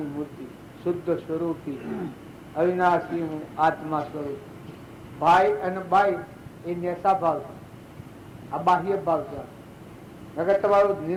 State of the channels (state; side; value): identical; both; correlation 1.00